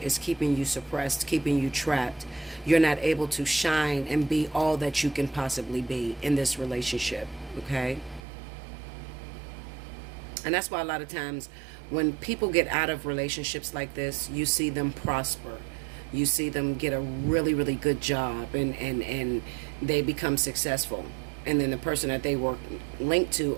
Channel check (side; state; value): left; drops out; at 8.2 s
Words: is keeping you suppressed, keeping you trapped. You're not able to shine and be all that you can possibly be in this relationship, okay? And that's why a lot of times when people get out of relationships like this, you see them prosper. You see them get a really, really good job and they become successful. and then the person that they were linked to